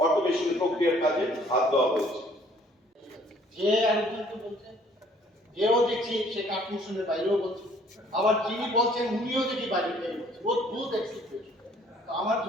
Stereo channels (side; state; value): both; normal; correlation 0.59